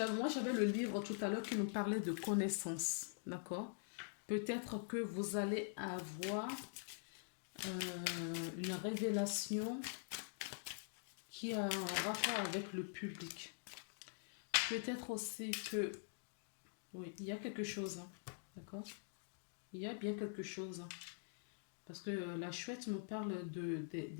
moi, j'avais le livre tout à l'heure qui nous parlait de connaissances. D'accord? Peut-être que vous allez avoir une révélation qui a un rapport avec le public. Peut-être aussi que, oui, il y a quelque chose, hein, d'accord? Il y a bien quelque chose, hein, parce que la chouette me parle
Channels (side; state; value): right; silent; digital silence